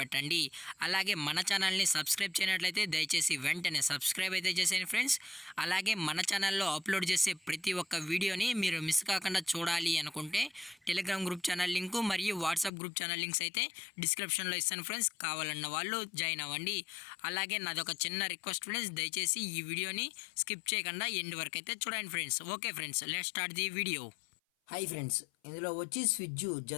అలాగే మన ఛానల్ని సబ్స్క్రైబ్ చేయనట్లయితే దయచేసి వెంటనే సబ్స్క్రైబ్ అయితే చేసేయండి ఫ్రెండ్స్. అలాగే మన ఛానల్లో అప్లోడ్ చేసే ప్రతి ఒక్క వీడియోని మీరు మిస్ కాకుండా చూడాలి అనుకుంటే టెలిగ్రామ్ గ్రూప్ ఛానల్ లింకు మరియు వాట్సాప్ గ్రూప్ ఛానల్ లింక్స్ అయితే డిస్క్రిప్షన్లో ఇస్తాను ఫ్రెండ్స్. కావాలన్న వాళ్ళు జాయిన్ అవ్వండి. అలాగే నాదొక చిన్న రిక్వెస్ట్ ఫ్రెండ్స్, దయచేసి ఈ వీడియోని స్కిప్ చేయకుండా ఎండ్ వరకు అయితే చూడండి friends. Okay friends, let's start the video. Hi friends, ఇందులో వచ్చి స్విజ్జు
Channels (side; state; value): right; drops out; at 12.7 s